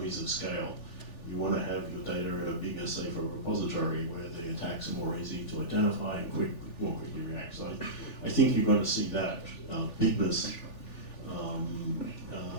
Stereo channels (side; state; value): right; late; 3.4 ms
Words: of scale. You want to have your data in a bigger, safer repository where the attacks are more easy to identify and more quickly react. So I think you're going to see that bigness